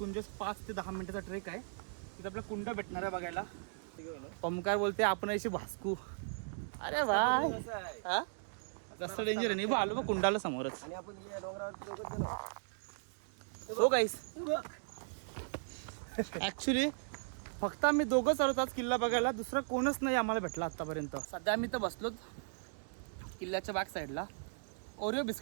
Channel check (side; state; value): left; silent; digital silence